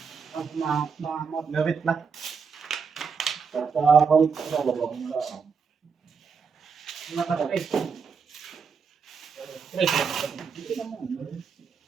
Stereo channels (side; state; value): left; quieter; 5.8 dB